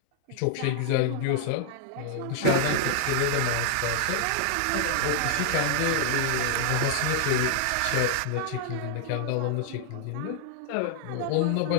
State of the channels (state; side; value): different; both; correlation -0.01